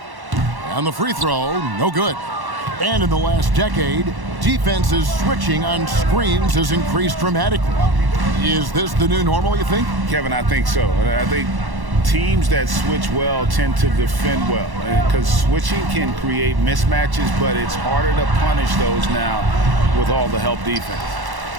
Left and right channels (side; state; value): left; late; 1.1 ms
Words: And the free throw, no good. And in the last decade, defenses switching on screens has increased dramatically. Is this the new normal, you think? Kevin, I think so. I think teams that switch well tend to defend well, because switching can create mismatches, but it's harder to punish those now with all the help defense.